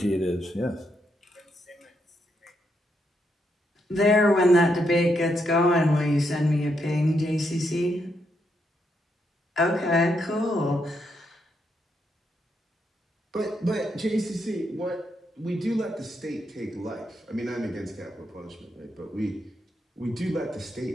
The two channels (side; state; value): both; normal; correlation 0.79